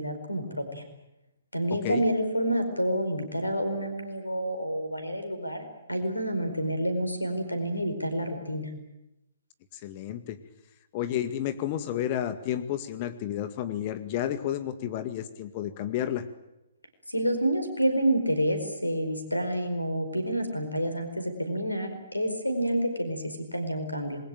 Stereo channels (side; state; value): both; inverted; correlation -0.72